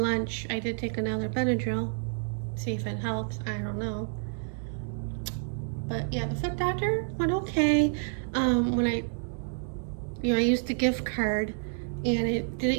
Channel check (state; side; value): silent; left; digital silence